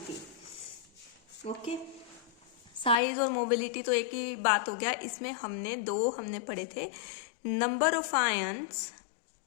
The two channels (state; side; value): drops out; right; at 3.0 s